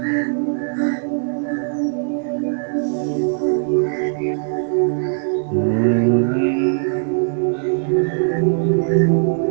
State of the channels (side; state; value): left; silent; digital silence